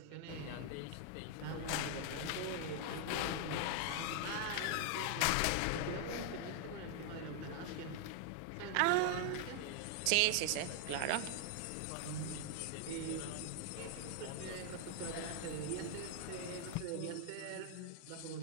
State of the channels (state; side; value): different; both; correlation 0.00